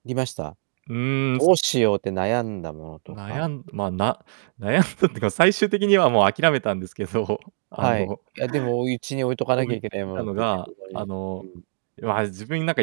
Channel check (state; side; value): silent; left; digital silence